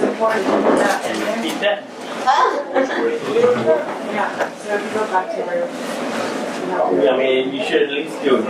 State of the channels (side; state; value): both; identical; correlation 1.00